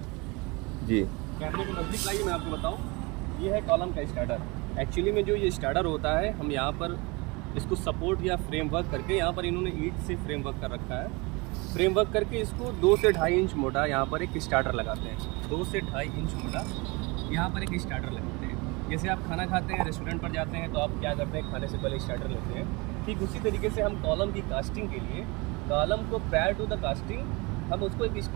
जी कैमरे को नज़दीक लाइए, मैं आपको बताऊँ। ये है कॉलम का स्टार्टर। एक्चुअली में जो ये स्टार्टर होता है, हम यहाँ पर इसको सपोर्ट या फ्रेमवर्क करके, यहाँ पर इन्होंने ईंट से फ्रेमवर्क कर रखा है। फ्रेमवर्क करके इसको 2 से 2.5 इंच मोटा यहाँ पर एक स्टार्टर लगाते हैं। 2 से 2.5 इंच मोटा यहाँ पर एक स्टार्टर लगाते हैं। जैसे आप खाना खाते हैं, रेस्टोरेंट पर जाते हैं, तो आप क्या करते हैं, खाने से पहले स्टार्टर लेते हैं। ठीक उसी तरीके से हम कॉलम की कास्टिंग के लिए, कॉलम को प्रायर टू द कास्टिंग हम उसको एक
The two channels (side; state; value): left; quieter; 26.5 dB